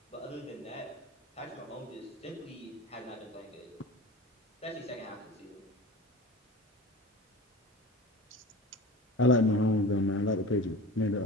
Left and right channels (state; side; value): normal; both; correlation 0.35